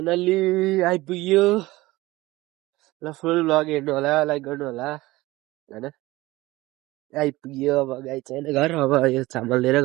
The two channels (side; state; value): left; quieter; 19.3 dB